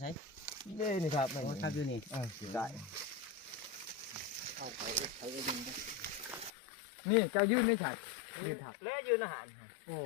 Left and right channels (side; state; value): right; drops out; at 6.5 s